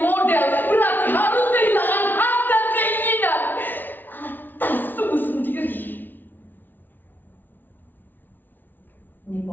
berarti harus kehilangan hak dan keinginan atas tubuh sendiri?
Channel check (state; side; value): late; right; 0.089 ms